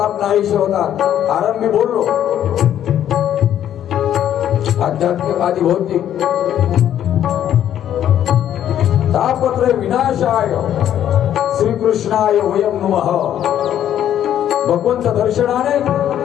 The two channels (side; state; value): right; quieter; 10.7 dB